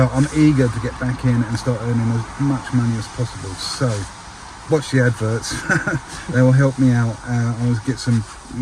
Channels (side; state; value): both; identical; correlation 1.00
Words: I'm eager to get back in and start earning as much money as possible. So watch the adverts. They will help me out. I'll get some